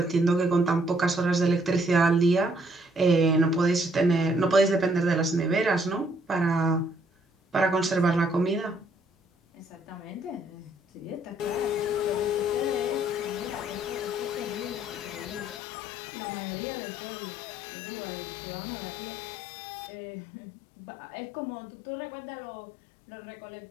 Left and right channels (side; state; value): right; drops out; at 15.6 s